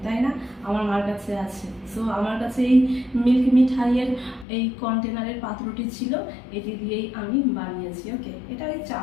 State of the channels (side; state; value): right; drops out; at 4.5 s